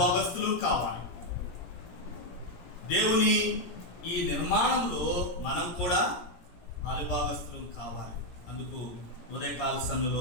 కావాలి. దేవుని ఈ నిర్మాణంలో మనం కూడా పాలుభాగస్తులు కావాలి. అందుకు ఉదయకాల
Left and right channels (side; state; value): right; late; 17 ms